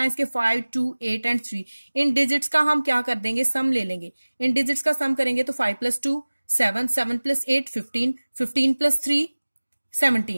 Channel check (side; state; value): both; inverted; correlation -1.00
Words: इसके, 5 2 8 एंड 3। इन डिजिट्स का हम क्या कर देंगे, सम ले लेंगे। इन डिजिट्स का सम करेंगे तो 5 + 2 7, 7 + 8 15, 15 + 3